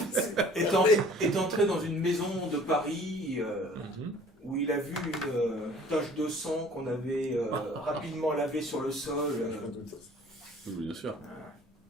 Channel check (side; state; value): both; normal; correlation 0.51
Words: est entré dans une maison de Paris où il a vu une tache de sang qu'on avait rapidement lavée sur le sol. Oui, bien sûr.